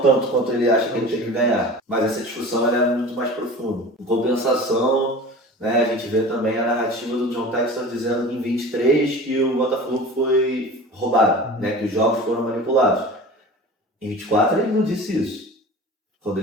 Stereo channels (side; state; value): both; normal; correlation 0.37